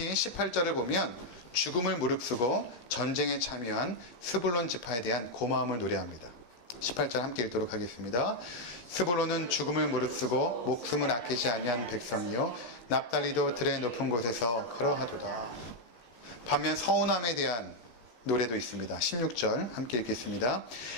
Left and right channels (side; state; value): right; late; 17 ms